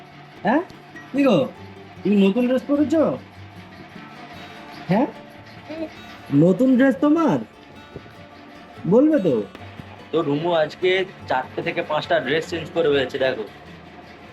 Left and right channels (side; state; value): both; identical; correlation 1.00